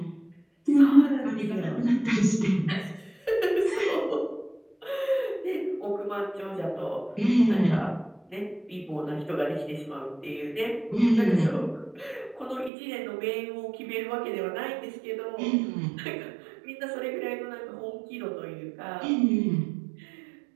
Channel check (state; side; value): drops out; left; at 12.7 s